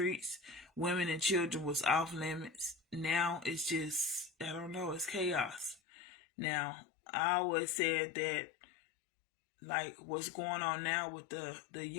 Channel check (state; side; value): drops out; right; at 5.8 s